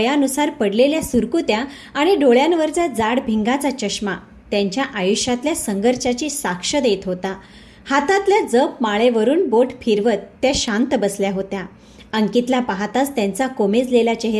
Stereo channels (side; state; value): both; identical; correlation 1.00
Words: पडलेल्या सुरकुत्या आणि डोळ्यांवरचा जाड भिंगाचा चष्मा त्यांच्या आयुष्यातल्या संघर्षाची साक्ष देत होता. हातातल्या जप माळेवरून बोट फिरवत त्या शांत बसल्या होत्या. अंकितला पाहताच त्यांचा कोमेजलेला